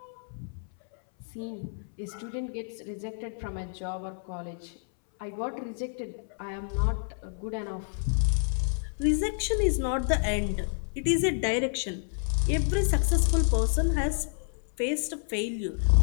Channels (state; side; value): silent; right; 58 dB below the other